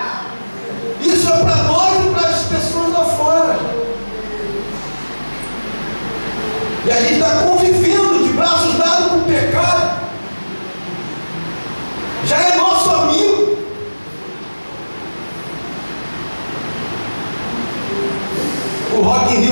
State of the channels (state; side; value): inverted; both; correlation -1.00